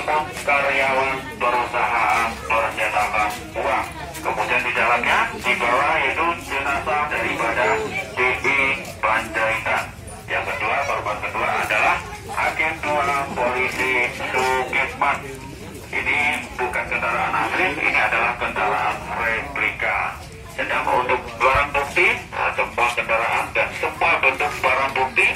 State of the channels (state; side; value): identical; both; correlation 1.00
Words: karyawan perusahaan percetakan uang. Kemudian di dalamnya dibawa yaitu jenazah daripada DI Panjaitan. Yang kedua, korban kedua adalah Agen 2 Polisi Sukitman. Ini bukan kendaraan asli, ini adalah kendaraan replika. Sedang untuk barang bukti, semua kendaraan dan semua bentuk barang bukti